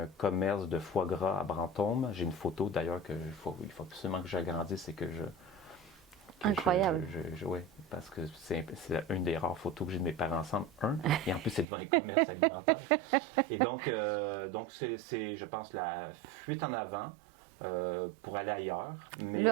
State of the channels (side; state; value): left; drops out; at 11.7 s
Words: commerce de foie gras à Brantôme. J'ai une photo d'ailleurs il faut absolument que j'agrandisse et que je... Incroyable. Oui, parce que c'est une des rares photos que j'ai de mes parents ensemble. Et en plus, c'est devant un commerce alimentaire. Et donc c'est, je pense, la fuite en avant pour aller ailleurs. Mais le